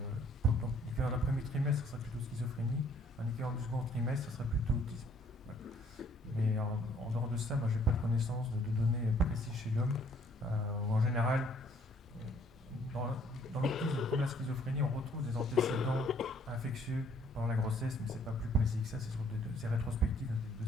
donc, l'équivalent d'un premier trimestre, ce serait plutôt schizophrénie. Un équivalent du second trimestre, ce serait plutôt autisme. Voilà. Mais en dehors de ça, moi, j'ai pas de connaissance de données précises chez l'homme. En général, dans l'autisme comme la schizophrénie, on retrouve des antécédents infectieux pendant la grossesse, mais c'est pas plus précis que ça. C'est rétrospectif dans des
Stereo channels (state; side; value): normal; both; correlation 0.62